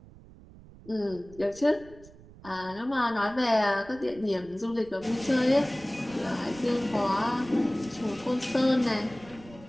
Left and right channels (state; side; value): noise; right; rumble, 21 dB below the sound